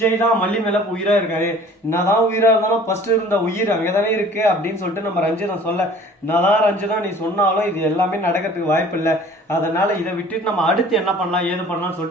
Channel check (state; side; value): normal; both; correlation 0.48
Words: தான் மல்லி மேல உயிரா இருக்காரு, என்னதான் உயிரா இருந்தாலும் ஃபர்ஸ்ட் இருந்த உயிர் அங்கதானே இருக்கு அப்படின்னு சொல்லிட்டு நம்ம ரஞ்சிதம் சொல்ல, என்னதான் ரஞ்சிதம் நீ சொன்னாலும் இது எல்லாமே நடக்கிறதுக்கு வாய்ப்பு இல்லை. அதனால இதை விட்டுட்டு நம்ம அடுத்து என்ன பண்ணலாம், ஏது பண்ணலாம்னு